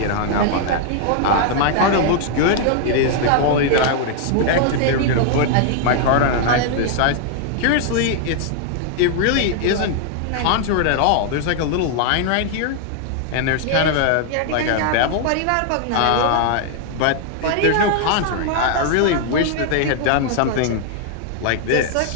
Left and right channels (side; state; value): both; different; correlation 0.00